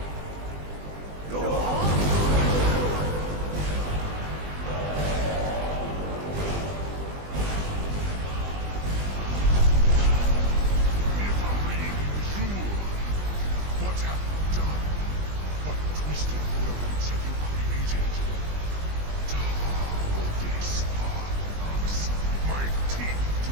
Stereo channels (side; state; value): left; late; 20 ms